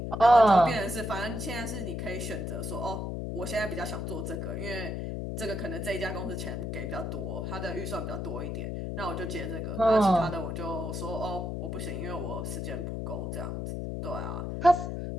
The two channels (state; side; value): noise; left; hum, 3 dB below the sound